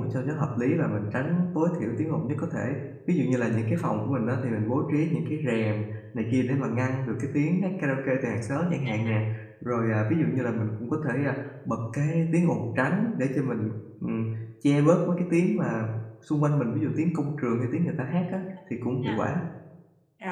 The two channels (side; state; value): both; identical; correlation 1.00